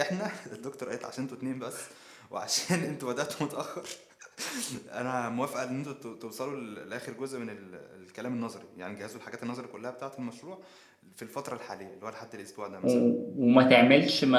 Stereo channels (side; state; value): both; identical; correlation 1.00